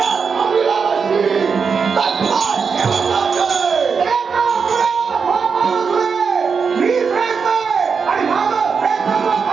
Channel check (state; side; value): quieter; left; 5.7 dB